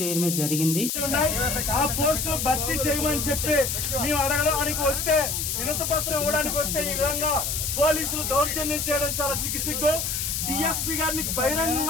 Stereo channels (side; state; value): left; noise; hiss, 1 dB below the sound